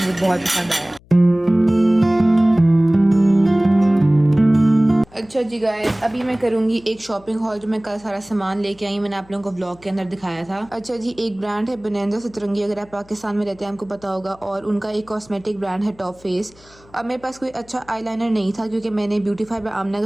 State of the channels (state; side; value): noise; left; hum, 27 dB below the sound